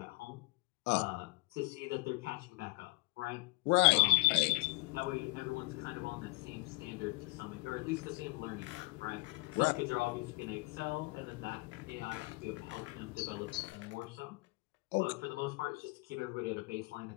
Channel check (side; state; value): right; quieter; 22.4 dB